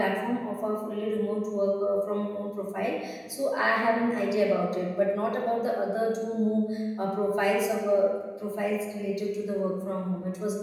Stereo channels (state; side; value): identical; both; correlation 1.00